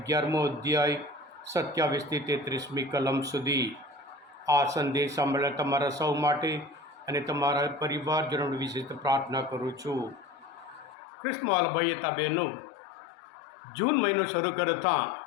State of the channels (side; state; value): right; drops out; at 11.0 s